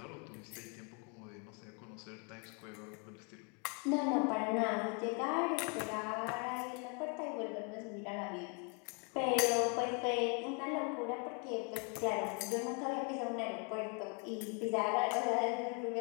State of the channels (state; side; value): quieter; right; 35.9 dB